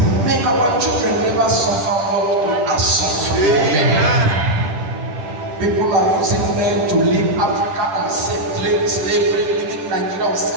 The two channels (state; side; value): late; left; 10 ms